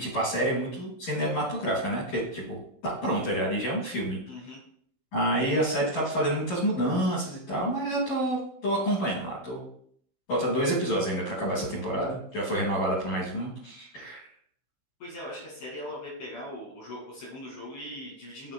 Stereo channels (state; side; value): late; right; 15 ms